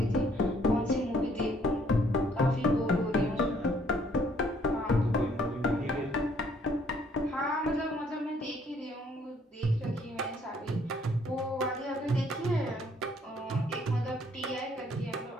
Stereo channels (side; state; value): both; normal; correlation 0.64